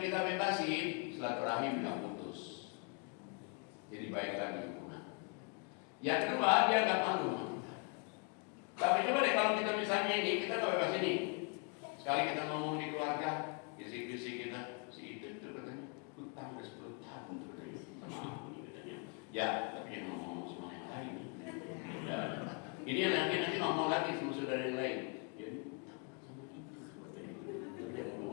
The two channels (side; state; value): right; quieter; 37.1 dB